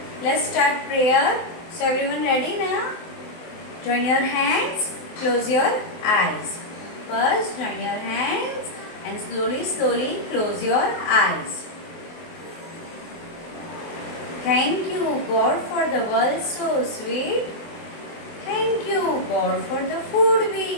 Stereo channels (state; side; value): late; right; 24 ms